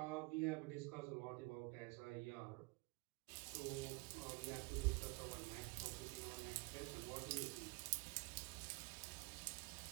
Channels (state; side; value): quieter; left; 26.8 dB